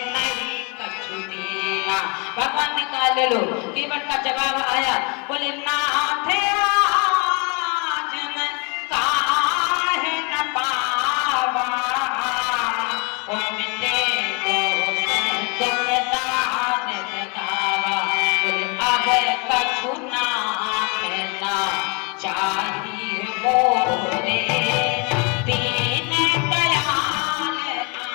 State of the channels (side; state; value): right; quieter; 32.9 dB